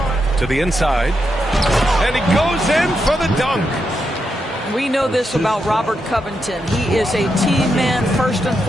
To the inside. And he goes in for the dunk. We know this about Robert Covington. He is a team man first and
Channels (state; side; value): normal; both; correlation 0.84